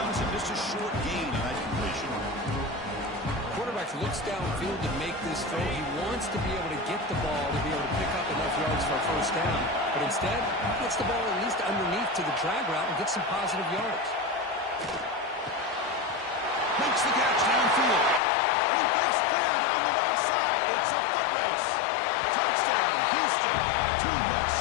him. Just a short gain on that completion. Quarterback looks downfield to make this throw. He wants to be able to get the ball to be able to pick up enough yards for a first down. But instead, he gets the ball at least underneath to the drag route and gets some positive yards. Makes the catch downfield. And he breaks clear down the right side. It's a foot race. Touchdown, Houston. Too much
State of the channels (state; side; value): drops out; right; at 18.2 s